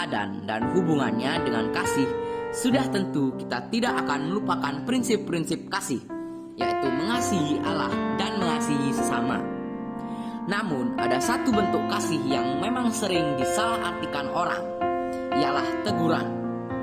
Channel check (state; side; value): identical; both; correlation 1.00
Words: dan hubungannya dengan kasih, sudah tentu kita tidak akan melupakan prinsip-prinsip kasih, yaitu mengasihi Allah dan mengasihi sesama. Namun ada satu bentuk kasih yang memang sering disalahartikan orang, ialah teguran.